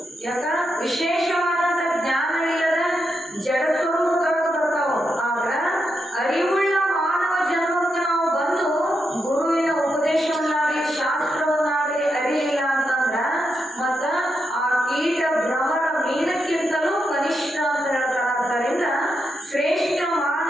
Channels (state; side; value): normal; both; correlation 0.84